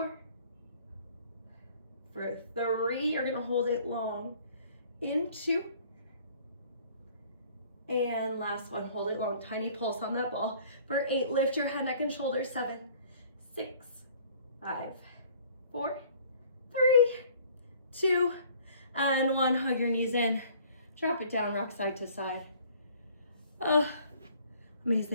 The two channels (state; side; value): inverted; both; correlation -0.55